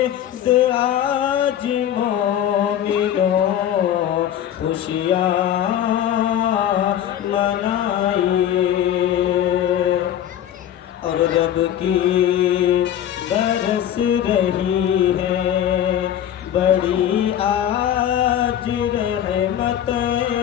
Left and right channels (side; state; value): right; quieter; 10.7 dB